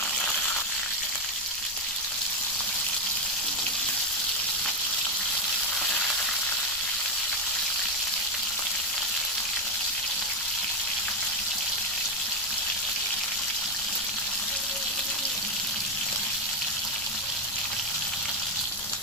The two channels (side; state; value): left; noise; rumble, 20 dB below the sound